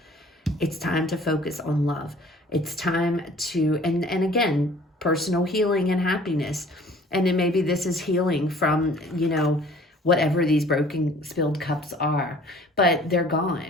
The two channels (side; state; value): both; normal; correlation 0.51